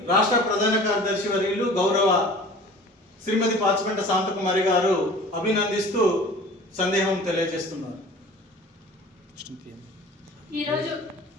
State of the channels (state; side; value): normal; both; correlation 0.44